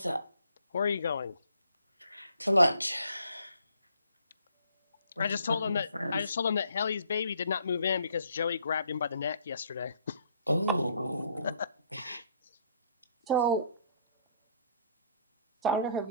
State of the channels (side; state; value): both; inverted; correlation -0.63